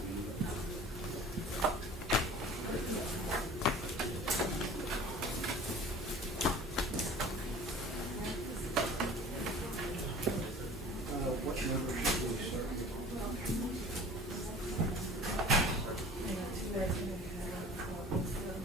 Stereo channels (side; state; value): both; normal; correlation 0.44